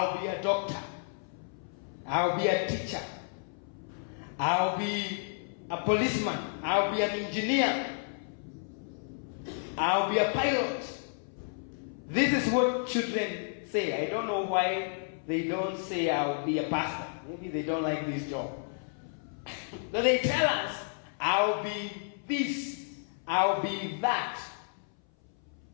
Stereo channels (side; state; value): right; silent; 57 dB below the other